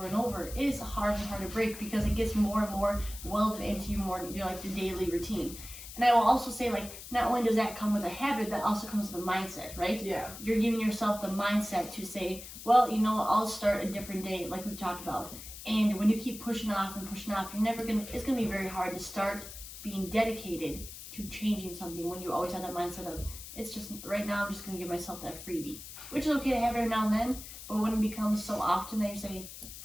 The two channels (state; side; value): noise; left; hiss, 13 dB below the sound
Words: and over, it is hard and hard to break because it gets more and more welded into your like the daily routine. And I will also say, like, not only does that come with a habit, that also comes with a mindset, right? Yeah. You're giving yourself the mindset to say, well, I'll start a different day, like we've talked about. And when you keep pushing off, it's gonna be very hard to start being dedicated to changing something when you always have that mindset of, it's just, right now I'm just gonna give myself that freebie. Which is okay to have every now and then, but when it becomes so often that you say,